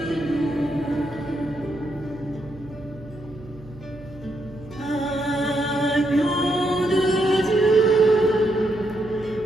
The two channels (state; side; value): noise; right; hum, 19 dB below the sound